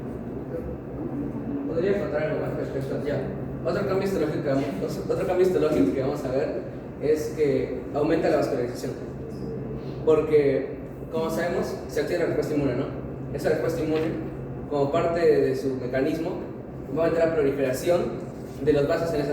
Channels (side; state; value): both; identical; correlation 1.00